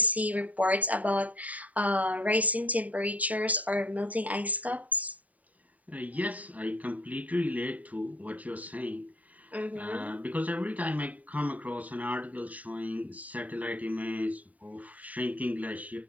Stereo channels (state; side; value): late; left; 0.072 ms